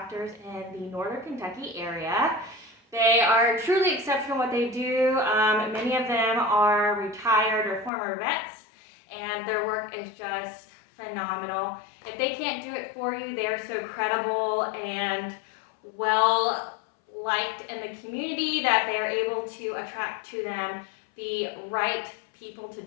in the northern Kentucky area. They are truly exceptional what they do. Many of them are retired or former vets, and their work is just phenomenal. If they can't do it for you, they are so credible and well liked in the community that they are able to attract to them the right people to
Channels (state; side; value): drops out; right; at 7.9 s